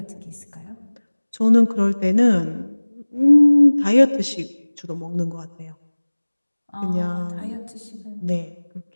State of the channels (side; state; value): both; inverted; correlation -1.00